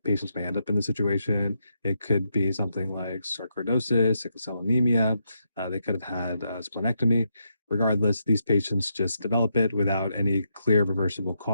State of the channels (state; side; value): inverted; both; correlation -0.80